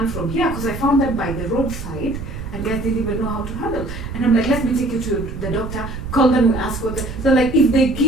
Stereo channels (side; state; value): right; noise; rumble, 8 dB below the sound